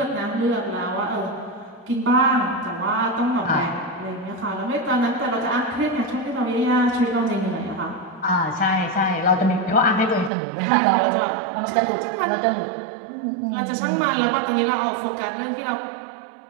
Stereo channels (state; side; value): drops out; left; at 10.3 s